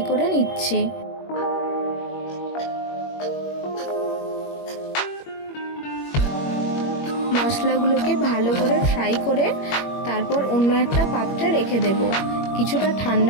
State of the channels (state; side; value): late; right; 21 ms